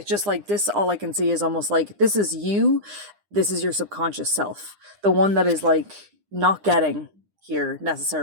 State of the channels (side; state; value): left; late; 9.9 ms